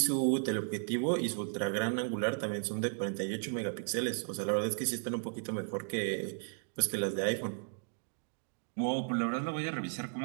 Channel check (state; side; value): silent; left; 55 dB below the other